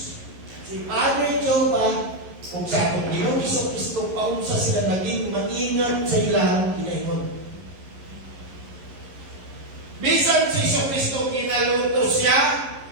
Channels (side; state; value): left; late; 11 ms